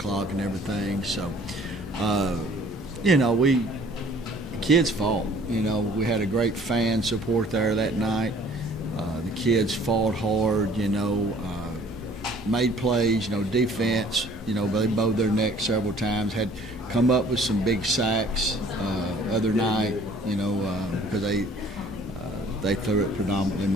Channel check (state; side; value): normal; both; correlation 0.54